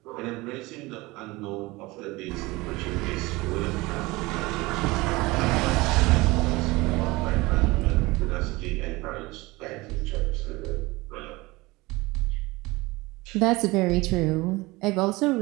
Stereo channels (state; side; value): quieter; left; 21.9 dB